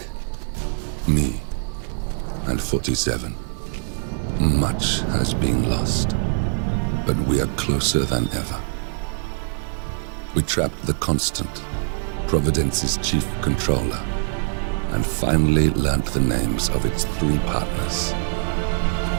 Me and 47. Much has been lost, but we are closer than ever. We trapped the Constant, Providence's chief controller, and finally learnt the names of its 3 partners.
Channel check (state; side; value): silent; left; digital silence